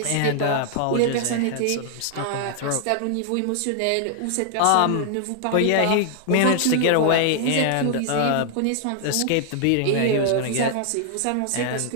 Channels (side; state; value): both; different; correlation 0.00